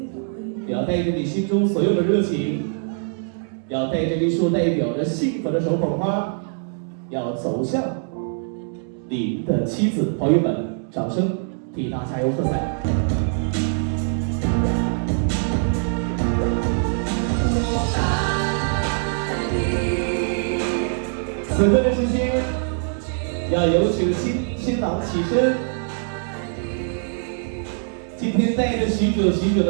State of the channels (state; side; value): silent; left; digital silence